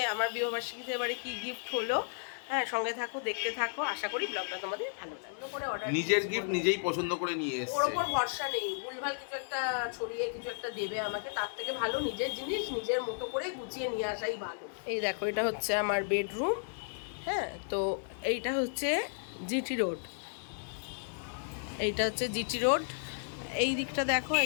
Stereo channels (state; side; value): silent; right; digital silence